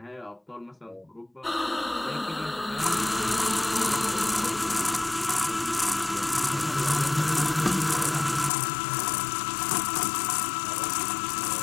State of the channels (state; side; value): drops out; right; at 8.5 s